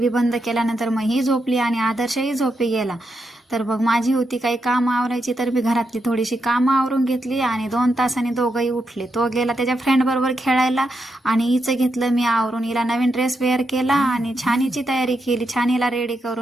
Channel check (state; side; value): normal; both; correlation 0.83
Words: बंद केल्यानंतर मग ही झोपली आणि आदर्शही झोपी गेला. तर मग माझी होती काही कामं आवरायची, तर मी घरातली थोडीशी कामं आवरून घेतली आणि 2 तासांनी दोघंही उठले. तो गेला त्याच्या फ्रेंड बरोबर खेळायला आणि हिचं घेतलं मी आवरून. हिला नवीन ड्रेस वेअर केला आणि छान हिची तयारी केली. छान हिला रेडी